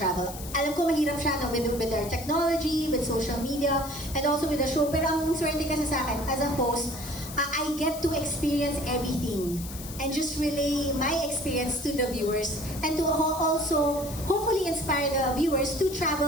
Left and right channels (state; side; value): noise; left; hiss, 12 dB below the sound